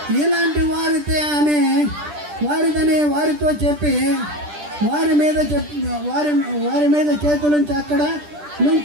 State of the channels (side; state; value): left; late; 10 ms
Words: ఇలాంటి వారిదని వారితో చెప్పి వారి మీద చేతులుంచి అక్కడ